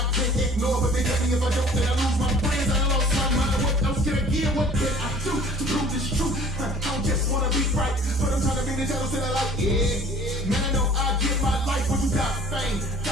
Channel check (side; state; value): both; normal; correlation 0.50